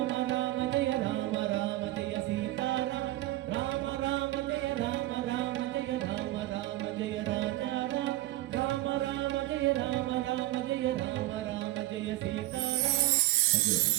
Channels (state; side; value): quieter; left; 16.6 dB